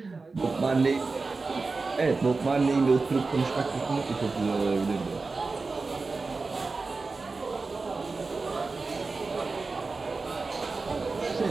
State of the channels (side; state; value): left; quieter; 4.0 dB